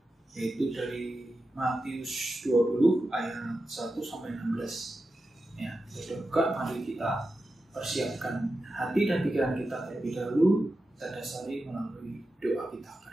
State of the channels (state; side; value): normal; both; correlation 0.91